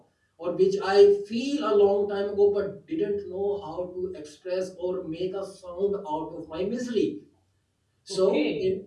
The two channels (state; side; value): identical; both; correlation 1.00